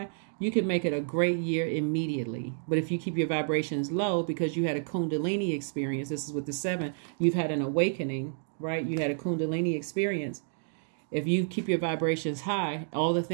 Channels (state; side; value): silent; left; digital silence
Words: you can make it a great year immediately. But if you keep your vibrations low because you had a Kundalini experience, this is with the 7, you've had an awakening, right? You had a Kundalini experience. If you keep your vibrations high, all the